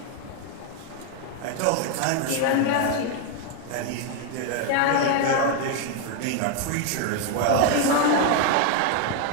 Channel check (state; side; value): different; both; correlation 0.01